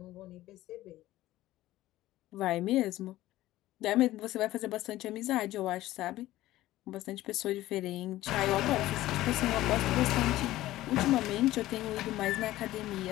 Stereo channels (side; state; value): right; quieter; 15.8 dB